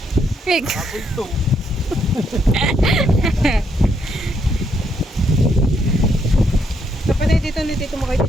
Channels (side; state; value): both; normal; correlation 0.74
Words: Pig. Kapatay dito ni Tito Makoy